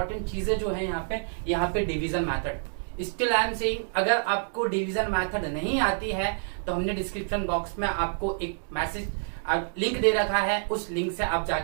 चीजें जो है यहाँ पे division method. Still I am saying, अगर आपको डिवीजन मेथड नहीं आती है तो हमने डिस्क्रिप्शन बॉक्स में आपको एक मैसेज लिंक दे रखा है, उस लिंक से आप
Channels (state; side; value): silent; left; digital silence